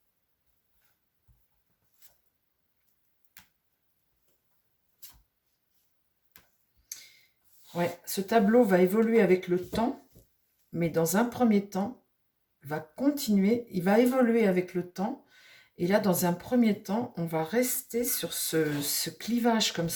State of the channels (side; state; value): both; identical; correlation 1.00